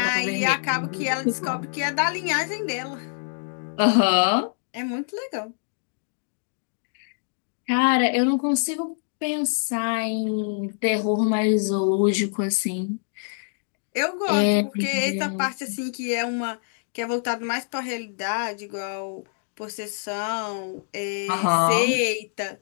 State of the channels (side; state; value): right; silent; digital silence